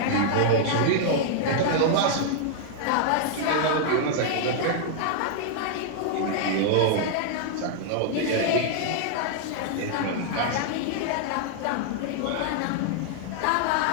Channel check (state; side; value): different; both; correlation -0.01